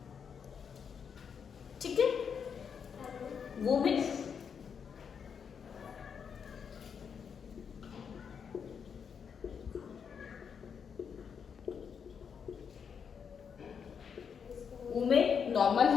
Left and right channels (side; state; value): right; quieter; 6.9 dB